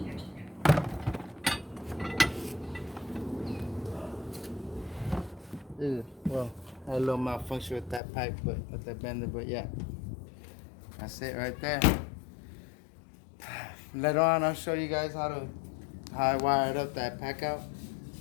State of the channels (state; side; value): drops out; right; at 8.0 s